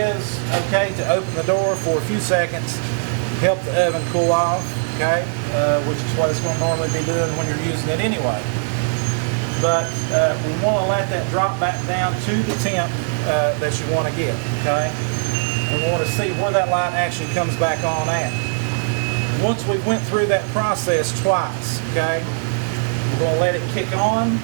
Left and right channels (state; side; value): silent; left; 65 dB below the other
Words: okay to open the door for a few seconds, help the oven cool off, okay, which is what it's going to normally be doing when you're using it anyway. But we want to let that drop back down to the temp that you want to get, okay? And we want to see where that light actually comes back on at. Once we went through that process twice, okay, we're going to let it kick on,